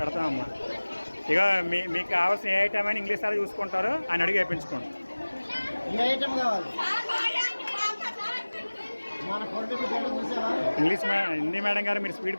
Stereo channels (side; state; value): both; inverted; correlation -1.00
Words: ఇక మీకు కావాల్సిన ఏ ఐటమ్ అయినా ఇంగ్లీష్ సార్ చూసుకుంటారు, ఆయన అడిగి వేయించుకోండి. ఇంగ్లీష్ హిందీ మేడం గారు మీరు